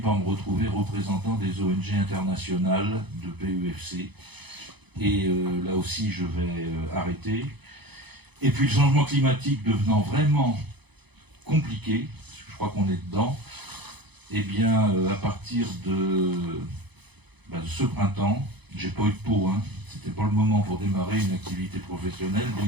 me retrouver représentant des ONG internationales de PEFC, et là aussi je vais arrêter. Et puis le changement climatique devenant vraiment compliqué, parce que je crois qu'on est dedans, eh bien à partir de ce printemps, j'ai pas eu de peau, hein. C'était pas le moment pour démarrer une activité professionnelle, bien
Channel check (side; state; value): left; late; 0.99 ms